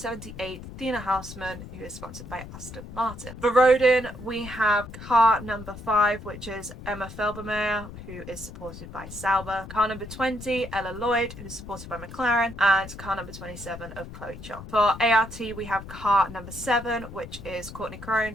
Tina Hausman, who is sponsored by Aston Martin. For Rodin, we have car number 5, which is Emma Felbermeyer, who is supported by Sauber. Car number 20, Ella Lloyd, who is supported by McLaren, and car number 27 of Chloe Chong. For ART, we have car number 7, which is Courtney Crone,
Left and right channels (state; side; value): noise; left; rumble, 13 dB below the sound